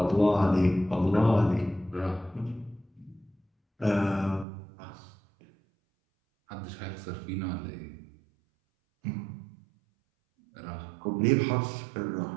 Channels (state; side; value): drops out; left; at 4.5 s